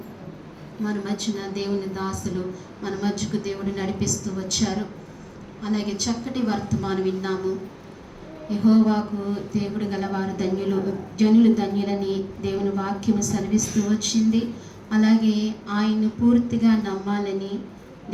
మన మధ్యన దేవుని దాసులు మన మధ్యకు దేవుడు నడిపిస్తూ వచ్చారు. అలాగే చక్కటి వర్తమానం విన్నాము. యెహోవాకు దేవుడు గలవారు ధన్యులు, జనులు ధన్యులని దేవుని వాక్యము సెలవిస్తూ వచ్చింది. అలాగే ఆయన్ను పూర్తిగా నమ్మాలని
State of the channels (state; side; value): identical; both; correlation 1.00